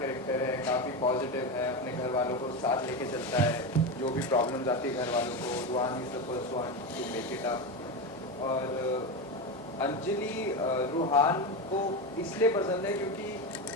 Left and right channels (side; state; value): both; normal; correlation 0.16